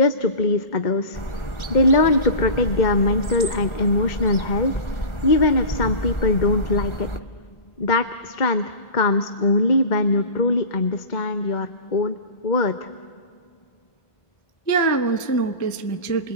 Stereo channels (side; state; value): right; late; 1.4 ms